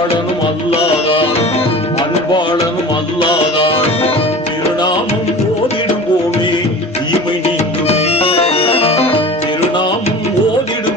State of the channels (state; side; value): normal; both; correlation 0.37